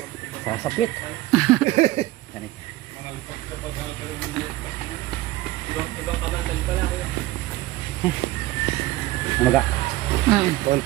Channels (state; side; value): quieter; left; 17.4 dB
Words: Sasapit. Ganit. Namaga.